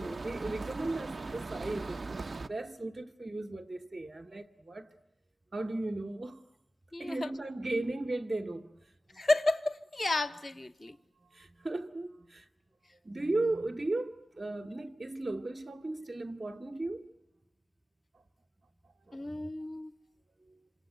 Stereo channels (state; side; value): normal; both; correlation 0.95